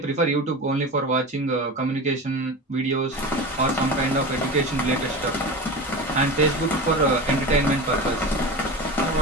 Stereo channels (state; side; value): normal; both; correlation 0.28